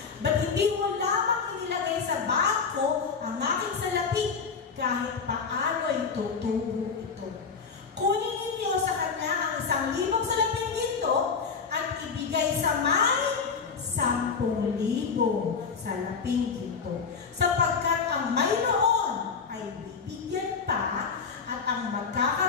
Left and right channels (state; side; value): quieter; right; 5.5 dB